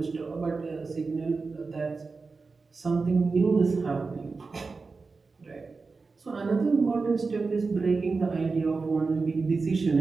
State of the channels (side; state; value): left; quieter; 4.2 dB